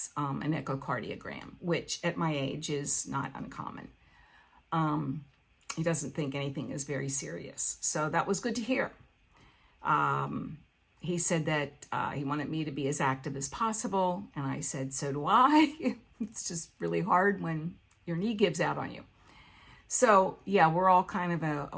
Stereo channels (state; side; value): identical; both; correlation 1.00